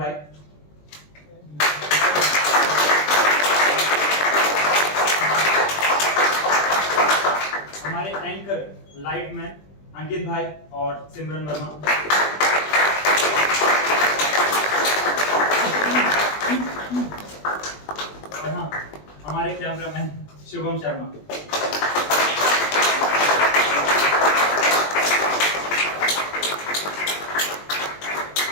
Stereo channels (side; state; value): right; late; 20 ms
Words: हमारे एंकर लाइट मैन अंकित भाई और सिमरन वर्मा। और हाँ हमारे कैमरामैन शुभम शर्मा।